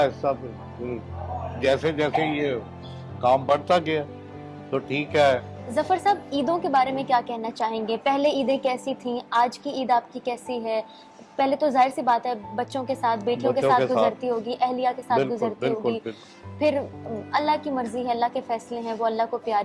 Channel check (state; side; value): identical; both; correlation 1.00